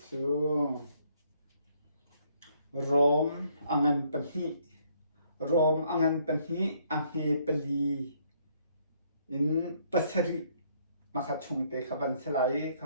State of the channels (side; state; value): both; inverted; correlation -0.68